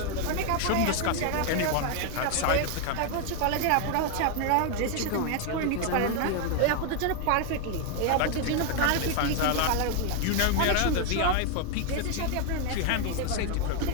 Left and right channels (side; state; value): both; different; correlation 0.01